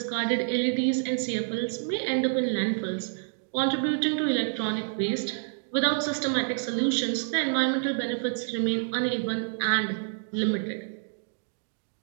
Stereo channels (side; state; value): left; silent; digital silence